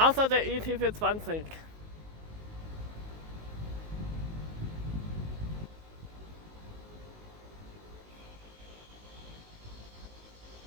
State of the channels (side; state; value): left; late; 19 ms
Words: der ET 420.